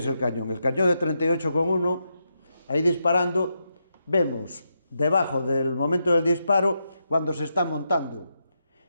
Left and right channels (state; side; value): inverted; both; correlation -0.84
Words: el cañón. El cañón de 38,1, ahí disparando, vemos debajo del momento del disparo cuando se está montando.